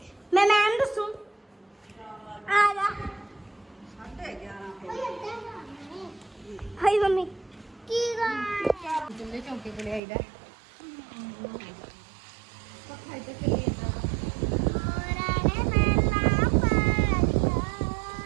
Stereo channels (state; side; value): drops out; left; at 10.0 s